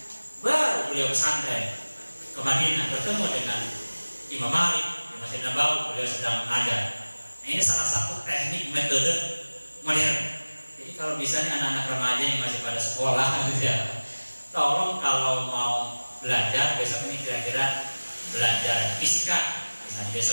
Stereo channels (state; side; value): inverted; both; correlation -1.00